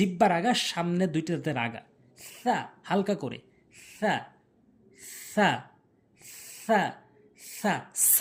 আগা সামনে 2টি দাঁতের আগা। সা, হালকা করে। সা সা সা সা।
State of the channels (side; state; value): both; identical; correlation 1.00